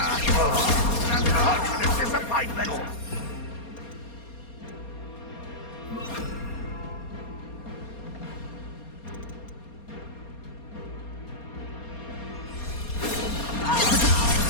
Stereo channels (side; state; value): right; late; 4.3 ms